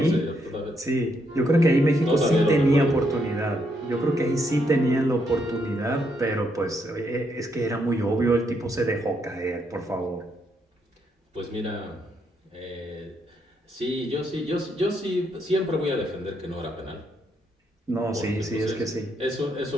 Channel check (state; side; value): normal; both; correlation 0.76